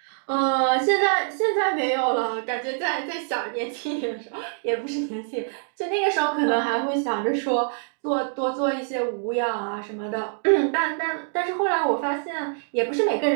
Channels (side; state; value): left; silent; digital silence